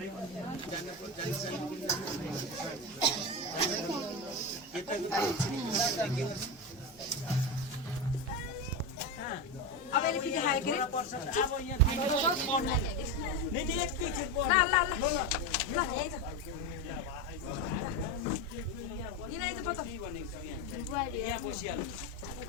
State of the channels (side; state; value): left; noise; hum, 27 dB below the sound